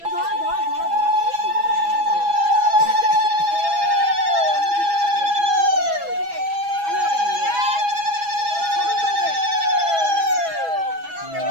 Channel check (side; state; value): left; late; 6.1 ms